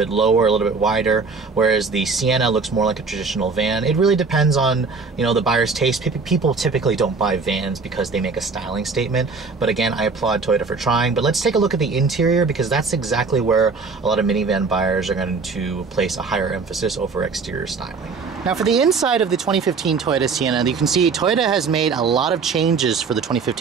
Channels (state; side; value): quieter; left; 4.6 dB